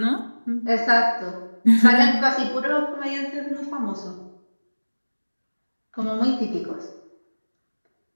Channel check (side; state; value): both; inverted; correlation -1.00